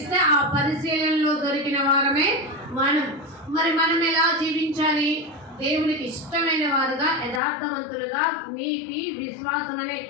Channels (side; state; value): right; drops out; at 7.4 s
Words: ఆ పరిశీలనలో దొరికిన వారమే మనం. మరి మనం ఎలా జీవించాలి? దేవునికి ఇష్టమైన వారుగా, యథార్థవంతులుగా, నీతి విశ్వాసం అనే